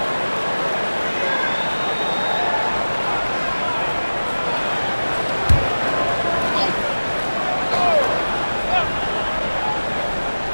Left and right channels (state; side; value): inverted; both; correlation -1.00